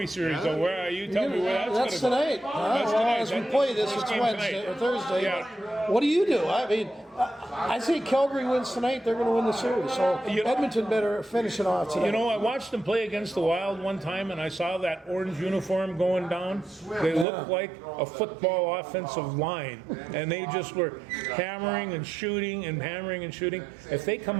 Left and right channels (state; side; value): drops out; left; at 17.2 s